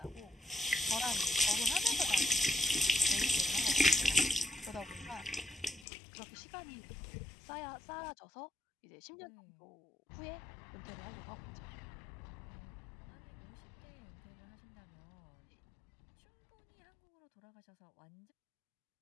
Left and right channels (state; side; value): drops out; right; at 5.9 s